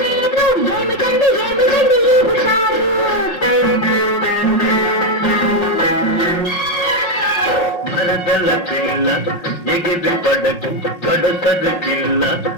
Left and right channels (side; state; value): right; late; 5.6 ms